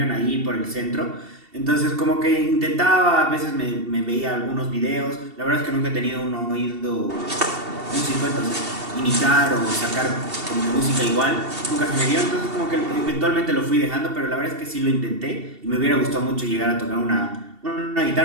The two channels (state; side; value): late; left; 2.7 ms